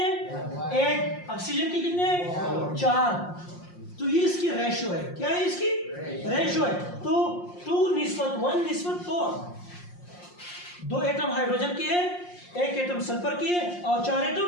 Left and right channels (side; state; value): right; late; 5.6 ms